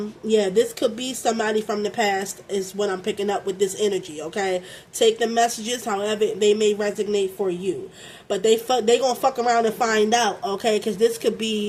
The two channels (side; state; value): both; identical; correlation 1.00